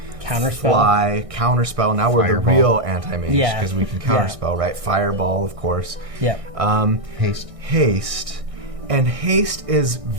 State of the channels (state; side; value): late; left; 1.6 ms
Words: Counterspell. Fly, Counterspell. Now we're Fireball. The real anti-mage because we can Counterspell, right? Fireball, of course. Yeah. Haste. And haste is